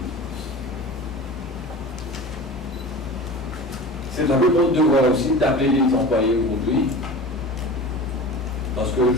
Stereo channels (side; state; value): both; normal; correlation 0.35